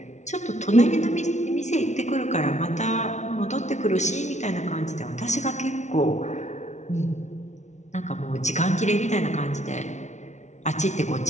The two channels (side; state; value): right; late; 0.33 ms